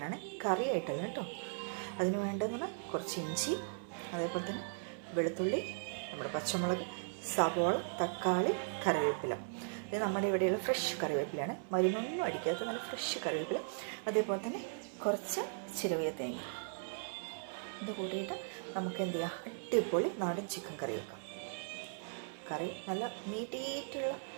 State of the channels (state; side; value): silent; left; 53 dB below the other